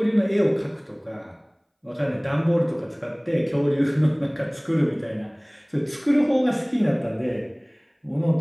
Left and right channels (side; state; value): both; identical; correlation 1.00